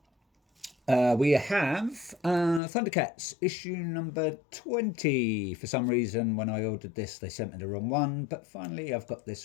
We have Thundercats issue number 20. For some reason, when I ordered this, they sent me the wrong one, but finally I've got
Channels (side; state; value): right; drops out; at 2.6 s